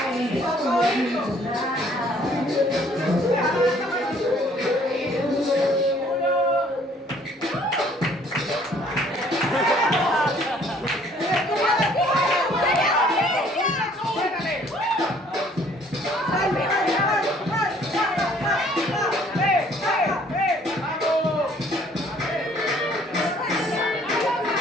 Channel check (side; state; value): both; normal; correlation 0.59